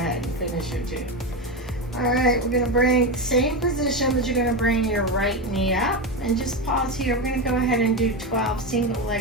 and finish your 2. All right, we're gonna bring same position, but you're gonna bring your right knee up and just pause here. We're gonna go ahead and do 12 single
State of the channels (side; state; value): both; normal; correlation 0.14